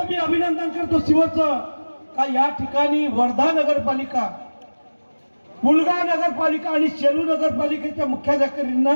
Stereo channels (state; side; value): inverted; both; correlation -1.00